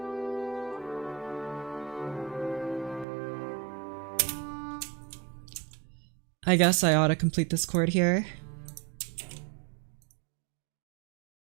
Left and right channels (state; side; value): drops out; left; at 3.1 s